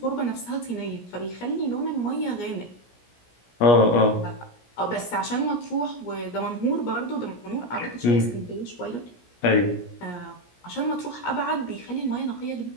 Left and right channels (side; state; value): right; late; 17 ms